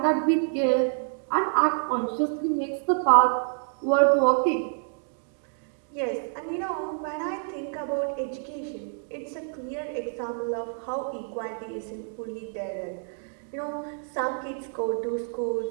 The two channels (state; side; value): silent; left; 60 dB below the other